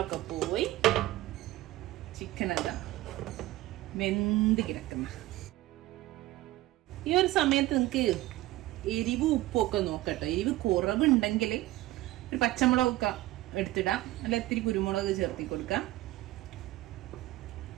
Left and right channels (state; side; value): quieter; left; 16.9 dB